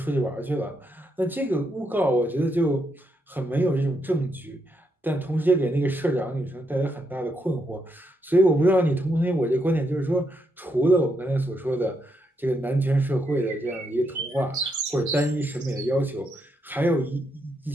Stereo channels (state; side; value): normal; both; correlation 0.79